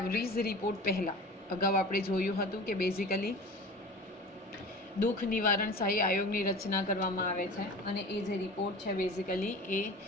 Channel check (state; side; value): normal; both; correlation 0.37